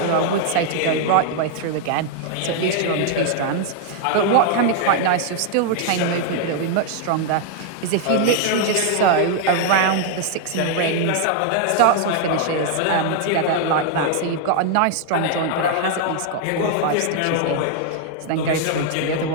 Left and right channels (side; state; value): both; different; correlation 0.00